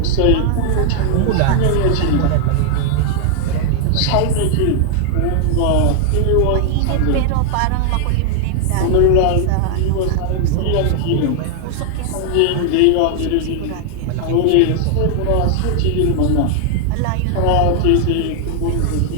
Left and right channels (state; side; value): different; both; correlation 0.00